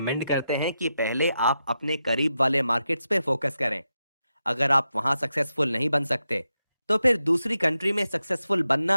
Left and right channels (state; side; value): inverted; both; correlation -0.87